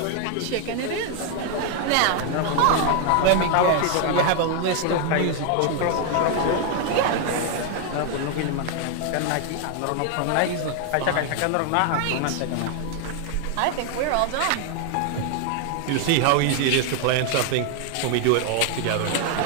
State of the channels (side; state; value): both; different; correlation 0.00